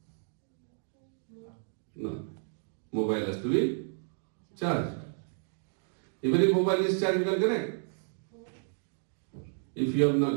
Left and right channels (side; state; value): left; silent; digital silence